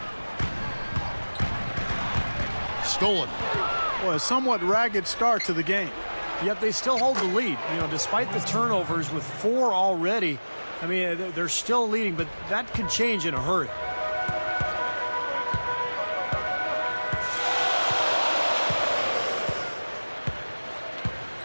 Stolen. Well, a somewhat ragged start to the game. Yet they still hold the lead. You know, despite the turnovers with 4 already, I mean, they're still leading, but that could change in a hurry.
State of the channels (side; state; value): both; inverted; correlation -1.00